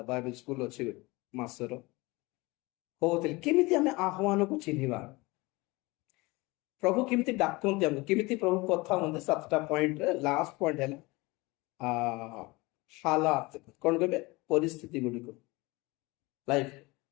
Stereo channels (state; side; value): quieter; right; 23.4 dB